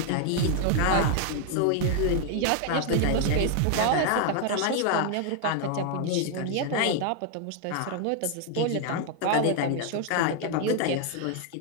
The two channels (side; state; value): both; different; correlation 0.00